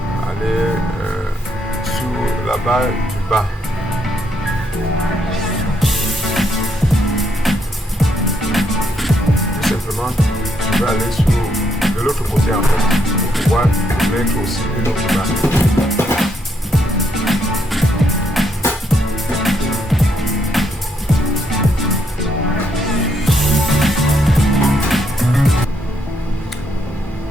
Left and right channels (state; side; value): normal; both; correlation 0.75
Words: aller sur la barre du bas. Tout simplement, je vais aller sur de l'autre côté en fait pour pouvoir mettre aussi une autre barre.